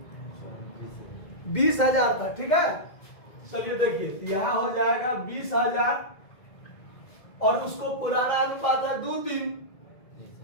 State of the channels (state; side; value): late; right; 2.1 ms